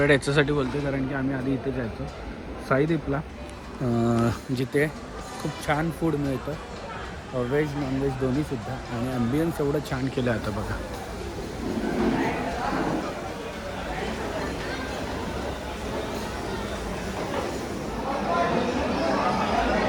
याच्यासाठी बोलतो, कारण की आम्ही आधी इथे जायचो साईदीपला, जिथे खूप छान फूड मिळतं, व्हेज नॉनव्हेज दोन्हीसुद्धा. आणि ॲम्बियन्स एवढं छान केलं आता बघा.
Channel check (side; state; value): both; identical; correlation 1.00